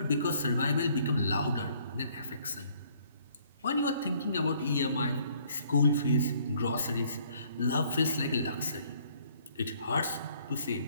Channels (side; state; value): both; inverted; correlation -0.62